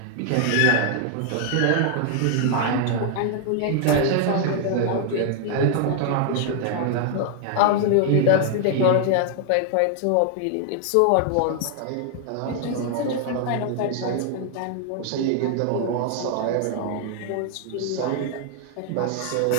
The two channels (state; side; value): different; both; correlation 0.00